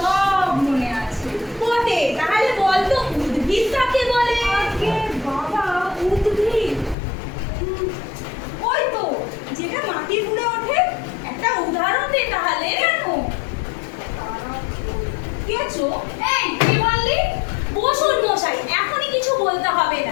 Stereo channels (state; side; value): drops out; right; at 7.0 s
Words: মনে আছে। বটে, তাহলে বল তো উদ্ভিদ কাকে বলে? আগে বাবা, উদ্ভিদ ওই তো যেটা মাটির উপরে ওঠে। একটা উদাহরণ দে তাহলে। কেন? কেছো? এই কি বললি? বসুন মশাই, এখনই কিছু বলতে হবে